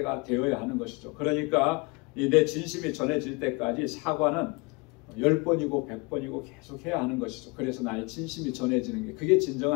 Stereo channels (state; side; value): quieter; right; 28.0 dB